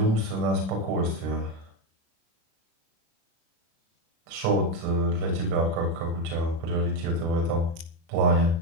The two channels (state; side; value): late; left; 36 ms